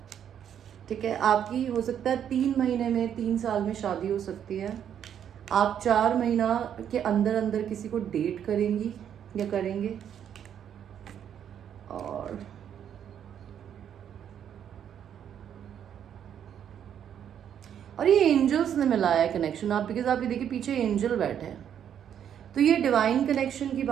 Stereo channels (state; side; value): quieter; left; 9.2 dB